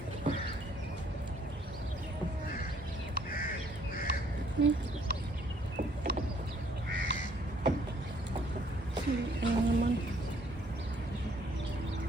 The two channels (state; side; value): normal; both; correlation 0.63